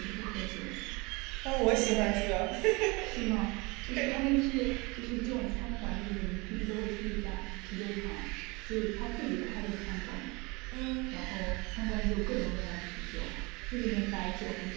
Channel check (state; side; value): quieter; left; 26.4 dB